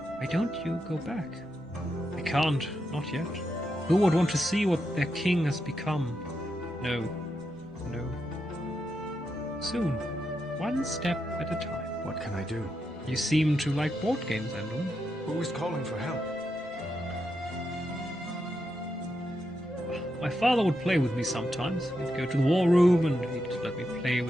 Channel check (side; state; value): both; normal; correlation 0.84